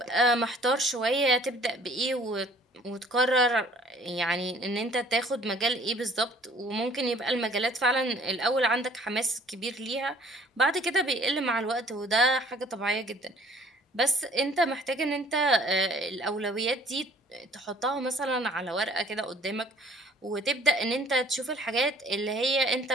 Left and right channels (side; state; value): both; normal; correlation 0.55